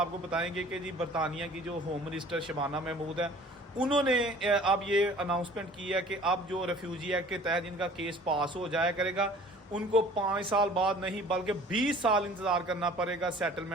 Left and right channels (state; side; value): normal; both; correlation 0.49